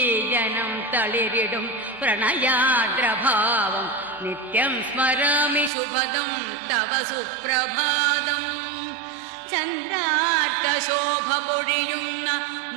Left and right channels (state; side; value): drops out; left; at 5.7 s